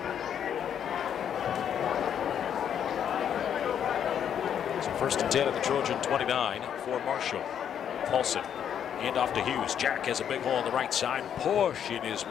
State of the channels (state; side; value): quieter; right; 8.9 dB